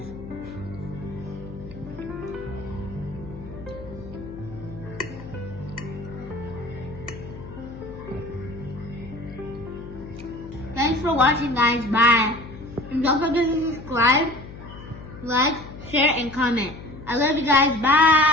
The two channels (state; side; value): noise; left; hum, 14 dB below the sound